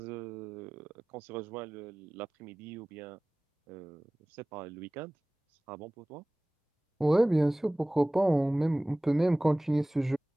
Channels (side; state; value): both; normal; correlation 0.98